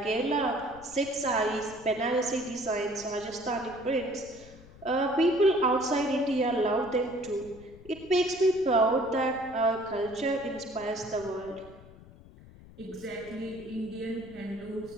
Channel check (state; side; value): noise; left; rumble, 20 dB below the sound